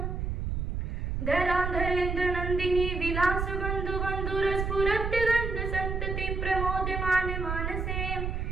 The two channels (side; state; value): right; noise; rumble, 2 dB below the sound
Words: धराधरेन्द्र नन्दिनी विलास बन्धु बन्धुरस्फुरत् गन्ध सन्तति प्रमोदमान मानसे